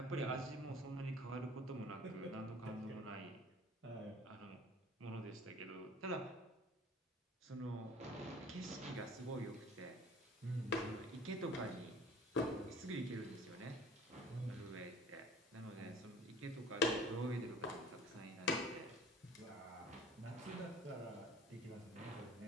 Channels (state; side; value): normal; both; correlation 0.47